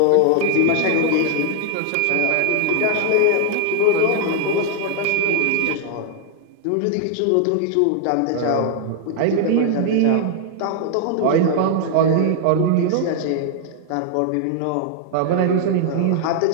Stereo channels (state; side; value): different; both; correlation 0.00